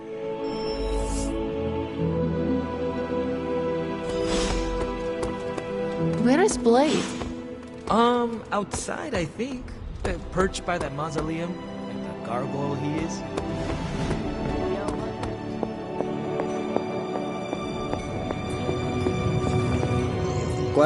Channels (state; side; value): identical; both; correlation 1.00